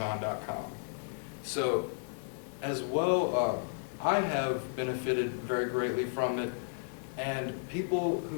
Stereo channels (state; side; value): silent; right; digital silence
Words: So, as well, I have benefited very greatly from it, and people